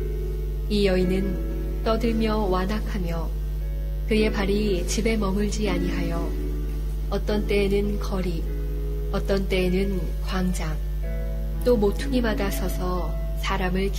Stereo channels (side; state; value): both; identical; correlation 1.00